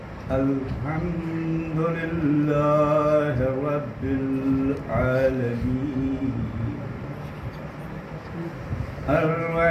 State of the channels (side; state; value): both; identical; correlation 1.00